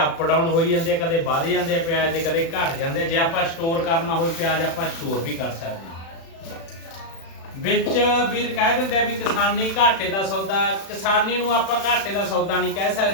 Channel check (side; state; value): right; late; 36 ms